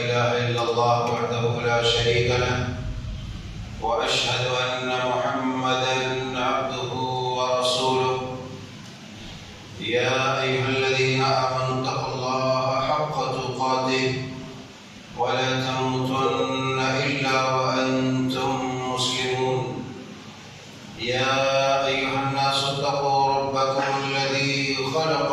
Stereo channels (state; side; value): identical; both; correlation 1.00